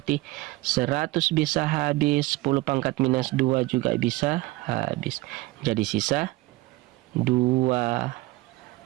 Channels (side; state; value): left; quieter; 20.4 dB